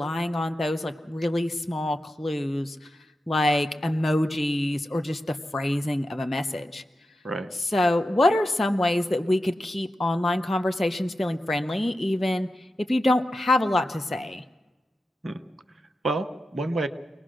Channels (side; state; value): both; normal; correlation 0.91